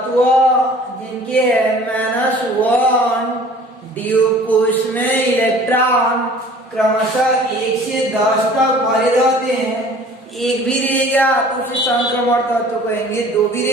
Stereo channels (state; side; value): normal; both; correlation 0.49